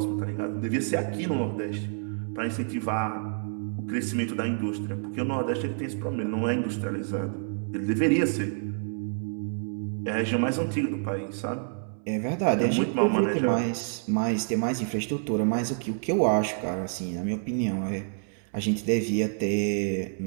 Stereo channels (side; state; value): left; silent; 59 dB below the other